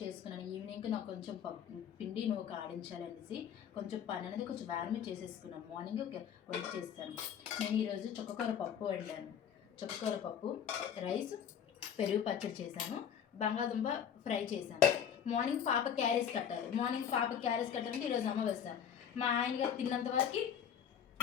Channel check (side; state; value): right; quieter; 8.5 dB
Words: చేసుకున్నాను. ఈవినింగ్కి నాకు కొంచెం పిండి నువ్వు ఆడించాలనేసి కొంచెం పని అనేది కొంచెం వేరమే చేసేసుకున్నాను. మార్నింగ్ వంట చేస్తాను. నేను ఈరోజు చుక్కకూర పప్పు వండాను. చుక్కకూర పప్పు, రైస్, పెరుగు పచ్చడి చేశాను, బంగాళదుంప ఫ్రై చేశాను. మార్నింగ్ పాప క్యారేజ్ కట్టాలంటే ఈరోజు అమావాస్య. మా ఆయన గారు తిన్నంత వరకు